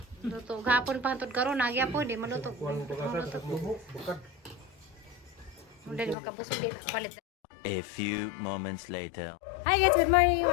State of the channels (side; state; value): right; drops out; at 6.2 s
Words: Luto, gahapon pa hantod karon nagyapon, di maluto. Mula di makabusog din, palit. A few moments later. Hi guys, good morning,